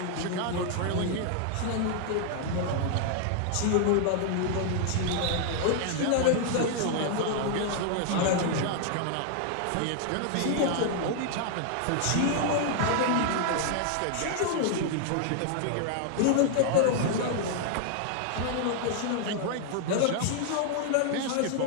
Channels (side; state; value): both; different; correlation 0.00